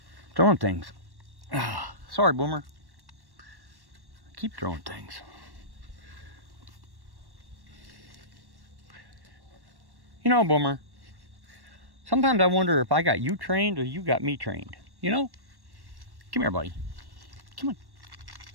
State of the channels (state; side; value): late; left; 1.1 ms